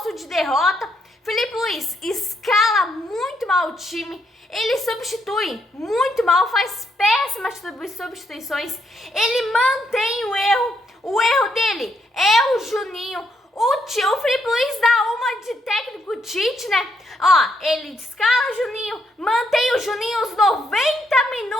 de derrota. Felipe Luiz escala muito mal o time, ele substitui muito mal, faz péssimas substituições, ele mantém o erro dele é o Juninho. O Felipe Luiz dá uma de técnico Tite, né? Ele escala o Juninho, mantém o Juninho os 90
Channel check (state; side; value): normal; both; correlation 0.76